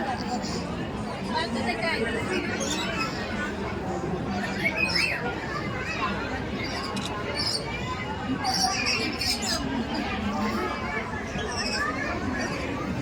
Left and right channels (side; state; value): both; identical; correlation 1.00